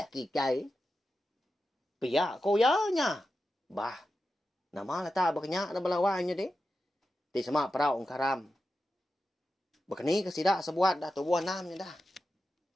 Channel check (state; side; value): normal; both; correlation 0.91